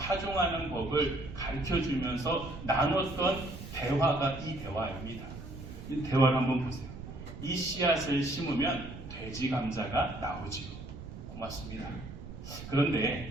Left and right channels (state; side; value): noise; right; rumble, 12 dB below the sound